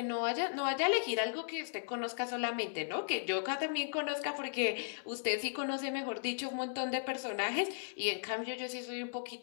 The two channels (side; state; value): right; silent; digital silence